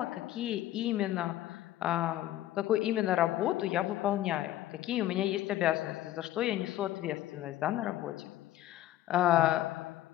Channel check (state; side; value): quieter; right; 14.0 dB